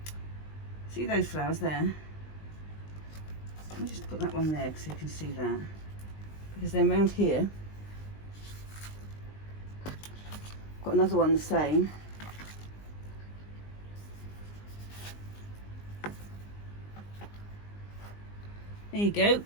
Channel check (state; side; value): late; right; 20 ms